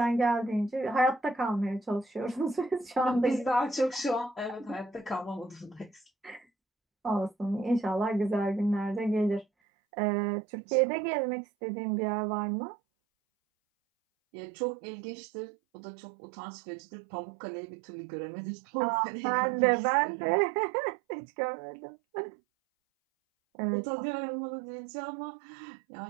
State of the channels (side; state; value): left; drops out; at 9.5 s